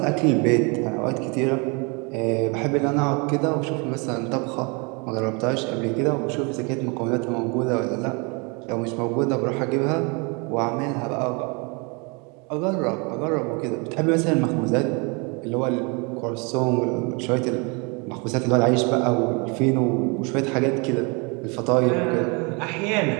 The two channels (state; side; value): quieter; left; 31.4 dB